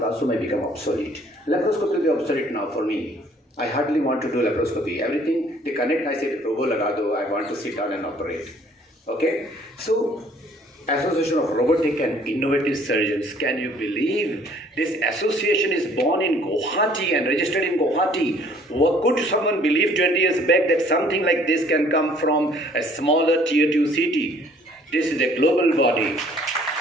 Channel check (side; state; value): both; normal; correlation 0.58